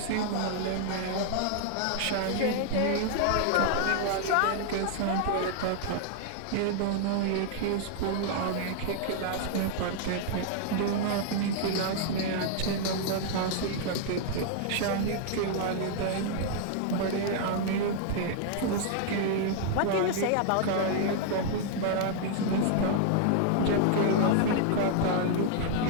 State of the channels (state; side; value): different; both; correlation 0.00